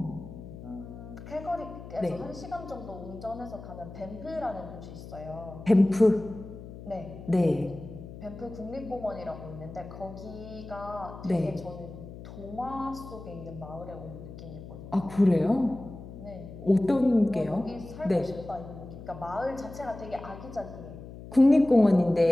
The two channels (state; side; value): noise; left; hum, 13 dB below the sound